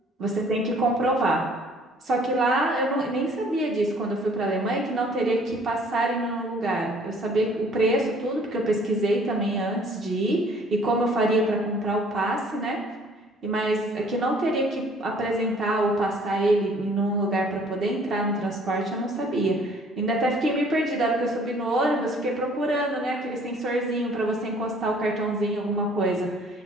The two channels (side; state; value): both; normal; correlation 0.57